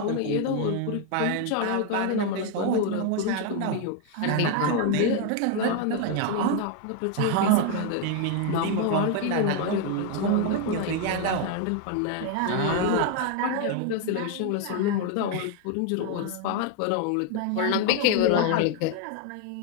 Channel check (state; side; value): different; both; correlation 0.01